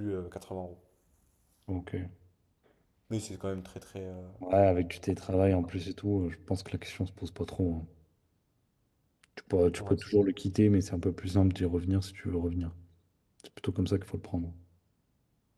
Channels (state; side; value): identical; both; correlation 1.00